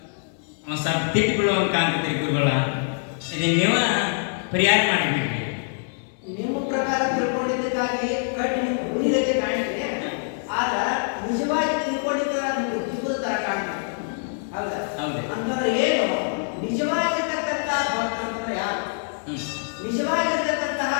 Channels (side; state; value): right; silent; digital silence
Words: ತಿಟ್ಟಿಗಳು ಅಂತ ಕಾಣ್ತೈತಿ ಗುರುಗಳ. ಇದು ನೀವು ಪರಿಹಾರ ಮಾಡಿಬಿಡ್ರಿ. ನಿಮ್ಮ ಪ್ರಕಾರ ತಿಳ್ಕೊಂಡಿದ್ದಕ್ಕಾಗಿ ಕಟ್ಟಿ ನಿಮ್ಮ ಹುಲಿಗತೆ ಕಾಣ್ತೀರಿ. ಆದ್ರ ನಿಜವಾಗಿ ತಿಳ್ಕೊಂಡಿದ್ದ ನಿಮ್ಗೆ ದಿಬ್ಬದ ತರ ಕಾಣ್ತೀರಿ. ಹೌದಾ? ಹೌದು. ಅಂತಂದ್ರೆ ಏನು ನಿಜವಾಗಿರ್ತಕ್ಕಂತಹ ಭಕ್ತ ಅಂತಂದ್ರೆ ಯಾರು? ನಿಜವಾಗಿರ್ತಕ್ಕಂತಹ